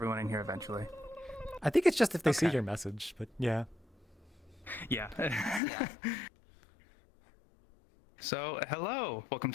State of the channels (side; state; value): right; drops out; at 5.6 s